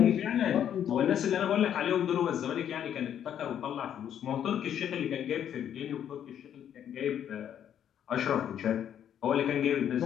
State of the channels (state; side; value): quieter; right; 9.6 dB